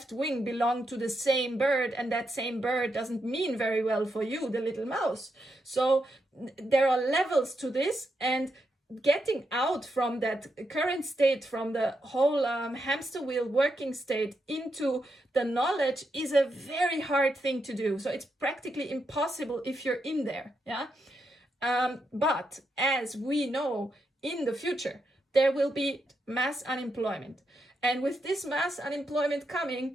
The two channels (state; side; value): normal; both; correlation 0.83